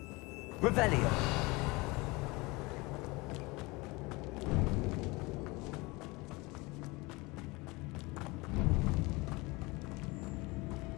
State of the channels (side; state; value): right; quieter; 24.3 dB